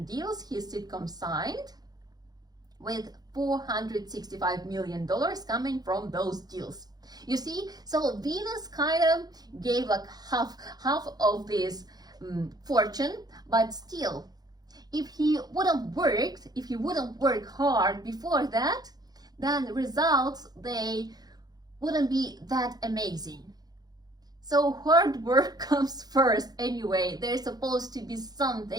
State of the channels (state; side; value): late; left; 0.19 ms